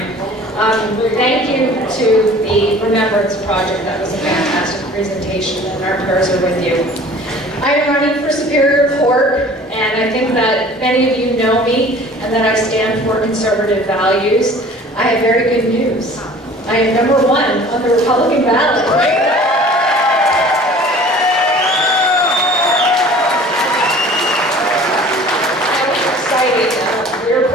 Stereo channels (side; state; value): both; normal; correlation 0.47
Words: Thank you to the Remembrance Project. That was a fantastic presentation, and our prayers are with you. I am running for Superior Court, and I think that many of you know me, and that I stand for conservative values. I have very good news. I am #1 on the Republican ballot.